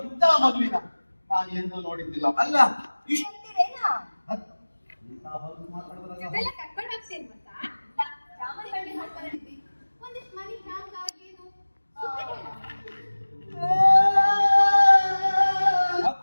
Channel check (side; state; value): both; inverted; correlation -1.00